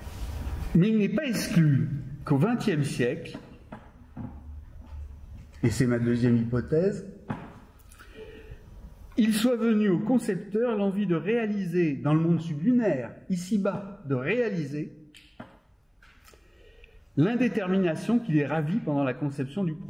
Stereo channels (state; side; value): identical; both; correlation 1.00